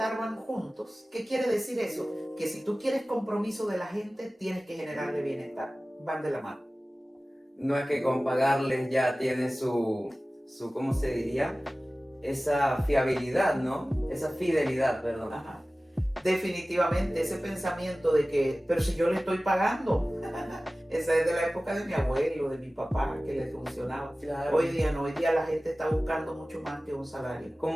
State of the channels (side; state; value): both; normal; correlation 0.97